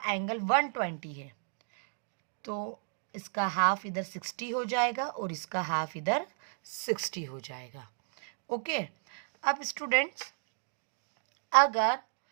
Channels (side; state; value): left; silent; digital silence